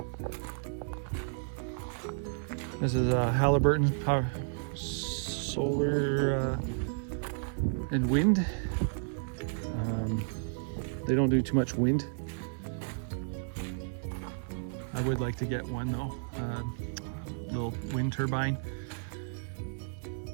This is Halliburton power solar and wind. They don't do too much wind. I would like to get one though, little wind turbine.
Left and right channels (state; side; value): silent; left; 56 dB below the other